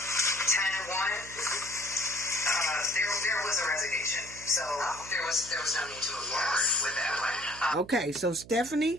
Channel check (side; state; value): right; noise; hum, 18 dB below the sound